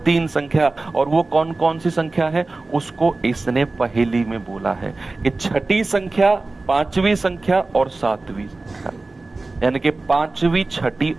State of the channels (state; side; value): quieter; left; 3.3 dB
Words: 3 संख्या। और वो कौन कौन सी संख्या है? उसको इसने पहेली में बोला है कि छठी संख्या, 5वीं संख्या और 7वीं संख्या, यानी कि 5वीं, छठी